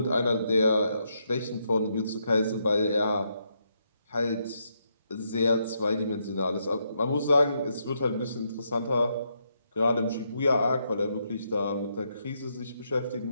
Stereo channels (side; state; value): both; inverted; correlation -0.78